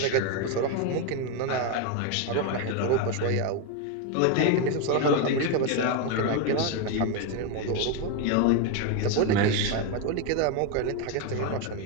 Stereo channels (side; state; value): both; different; correlation 0.02